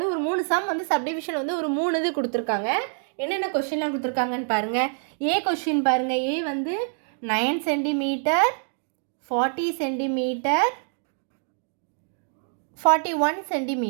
ஒரு 3 சம் வந்து சப்டிவிஷன் வந்து ஒரு 3 இது கொடுத்துருக்காங்க. என்னென்ன கொஷின்லாம் கொடுத்துருக்காங்கன்னு பாருங்கள். ஏ கொஷின் பாருங்கள். ஏ வந்து 9 சென்டிமீட்டர், 40 சென்டிமீட்டர், 41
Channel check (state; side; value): silent; left; 61 dB below the other